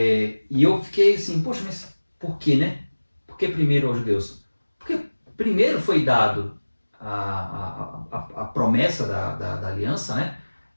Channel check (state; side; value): inverted; both; correlation -1.00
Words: eu fiquei assim, poxa, mas por que, né? Por que primeiro aos judeus? Porque primeiro foi dado a promessa da aliança, né?